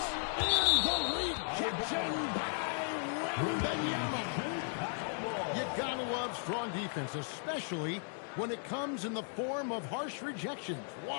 And the rejection by Wembanyama. You gotta love strong defense, especially when it comes in the form of harsh rejections.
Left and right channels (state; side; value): silent; right; 54 dB below the other